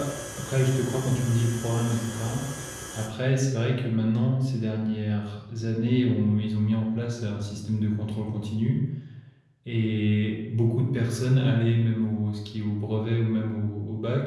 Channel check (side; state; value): both; identical; correlation 1.00